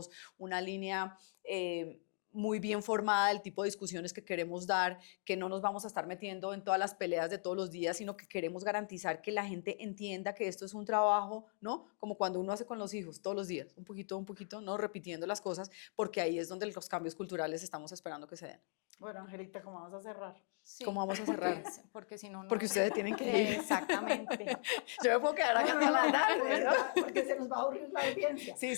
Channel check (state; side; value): silent; right; 52 dB below the other